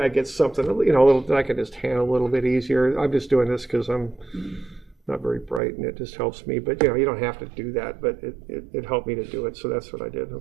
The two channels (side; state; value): left; drops out; at 5.6 s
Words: get something, you know, a little that I can just handle a little bit easier. I'm just doing this because I'm not very bright, and it just helps me. But, you know, you don't have to do that, but it helped me to do it, so that's what I did,